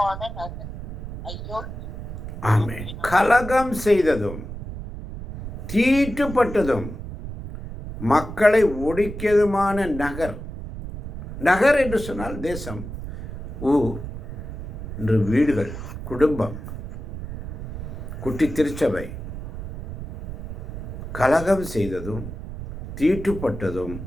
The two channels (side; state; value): right; noise; rumble, 9 dB below the sound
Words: நகர் ஐயோ. ஆமென். கலகம் செய்ததும் தீட்டுப்பட்டதும் மக்களை ஒடுக்கியதுமான நகர். நகர் என்று சொன்னால் தேசம், ஊர் என்று வீடுகள், குடும்பம், குட்டி திருச்சபை. கலகம் செய்ததும் தீட்டுப்பட்டதும்